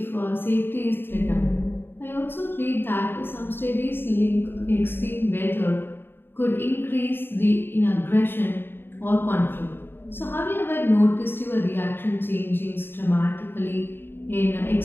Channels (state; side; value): late; right; 0.10 ms